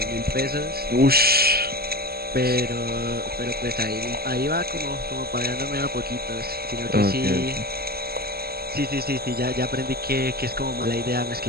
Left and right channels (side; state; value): left; late; 0.45 ms